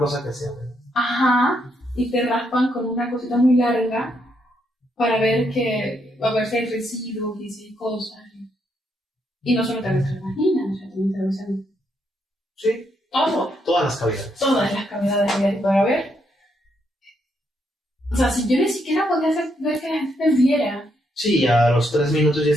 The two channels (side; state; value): both; normal; correlation 0.77